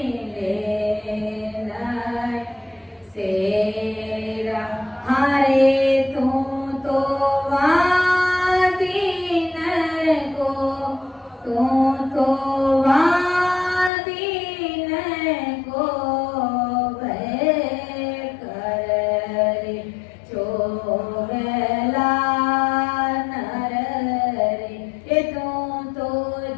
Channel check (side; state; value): right; drops out; at 13.9 s